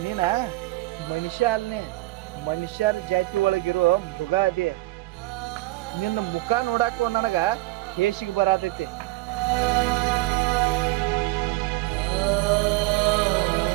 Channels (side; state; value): left; quieter; 20.1 dB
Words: ನೀನ ಮನುಷ್ಯ ಅಲ್ನೇ, ಮನುಷ್ಯರ ಜಾತಿ ಒಳಗಿರೋ ಮೃಗ ಅದೇ. ನಿನ್ನ ಮುಖ ನೋಡಾಕ ನನಗ ಹೇಸಿಗೆ ಬರತೈತಿ.